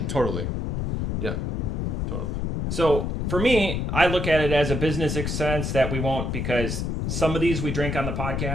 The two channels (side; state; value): left; noise; rumble, 1 dB below the sound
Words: Totally. Yeah, totally. So for me, I look at it as a business expense that we won't, because some of these we drink on the